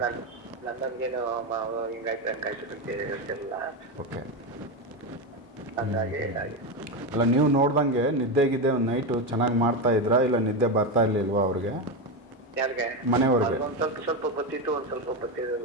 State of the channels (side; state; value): both; normal; correlation 0.13